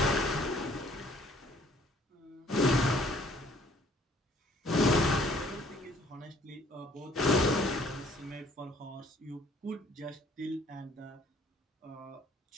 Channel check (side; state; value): both; normal; correlation 0.59